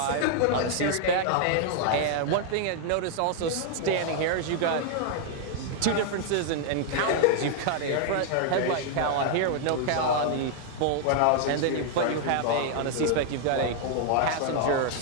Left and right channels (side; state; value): both; different; correlation 0.00